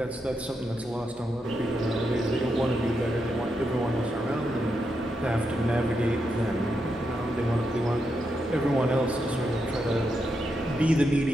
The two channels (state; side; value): normal; both; correlation 0.83